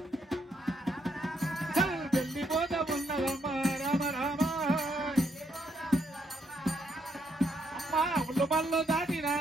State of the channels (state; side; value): normal; both; correlation 0.75